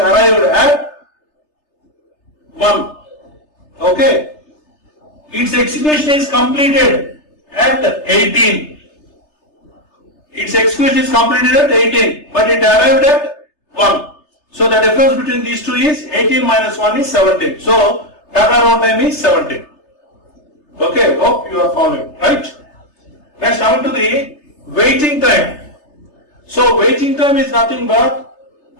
at 1. Okay, its execution is completed at 18. Its execution is completed at 18, but it arrived at 1. So the difference between these two is 18 minus 1 is 17. So turnaround time is 17. Okay, hope you are following, right? Next, coming to the waiting time. So waiting time is nothing but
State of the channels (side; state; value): right; late; 3.3 ms